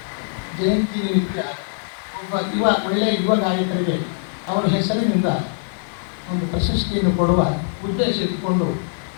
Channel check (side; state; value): right; silent; digital silence